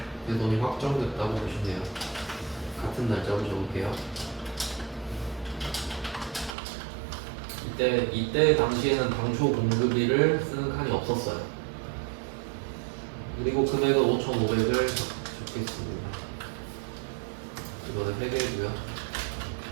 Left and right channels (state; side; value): drops out; left; at 6.6 s